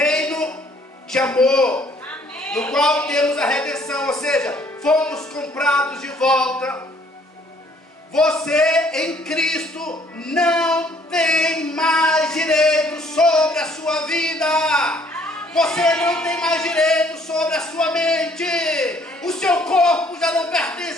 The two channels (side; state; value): both; normal; correlation 0.62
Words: de amor, amém, no qual temos a redenção, ou seja, fomos comprados de volta. Você em Cristo não tem mais direito sobre a sua vida. Você não tem mais direito sobre a sua mente. O seu corpo já não